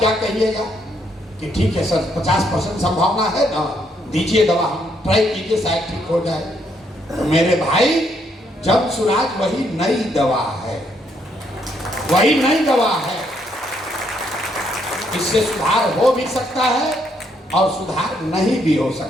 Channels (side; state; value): both; normal; correlation 0.73